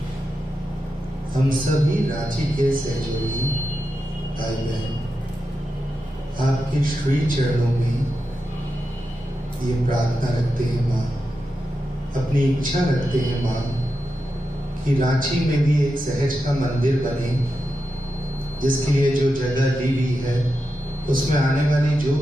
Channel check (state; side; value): normal; both; correlation 0.88